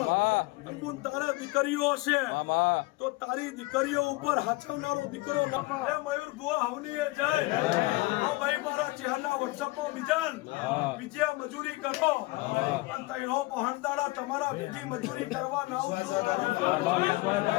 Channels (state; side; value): quieter; right; 21.7 dB